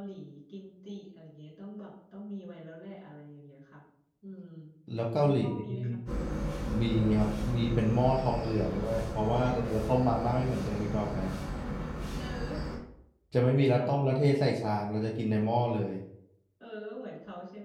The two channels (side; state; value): both; identical; correlation 1.00